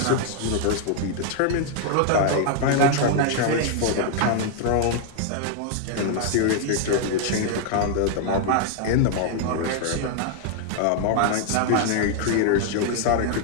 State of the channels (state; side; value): different; both; correlation 0.00